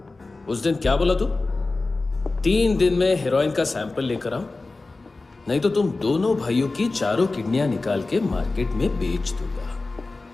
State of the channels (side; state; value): right; quieter; 3.4 dB